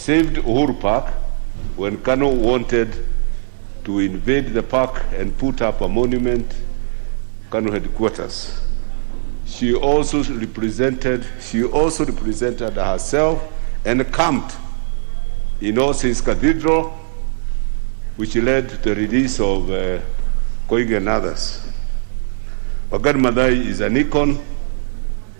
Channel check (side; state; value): left; silent; digital silence